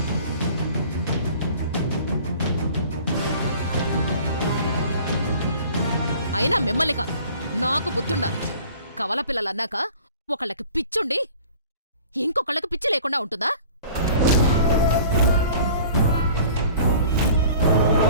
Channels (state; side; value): inverted; both; correlation -0.47